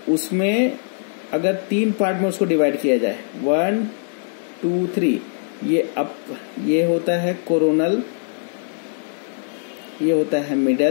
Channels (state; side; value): silent; right; 65 dB below the other